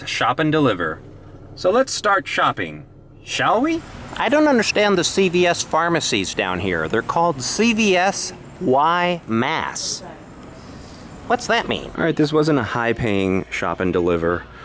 shop and deliver. So let's start shopping, shall we? I don't understand the CVS pharmacies down here. They're called CVS Y Mass. What's that mean? All right, this wasn't a high-paying shop and deliver,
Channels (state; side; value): identical; both; correlation 1.00